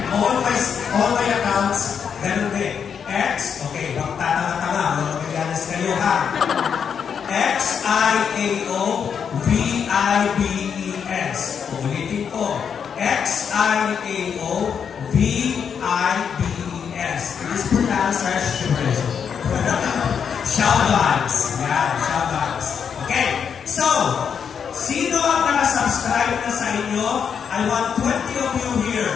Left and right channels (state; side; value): quieter; right; 7.2 dB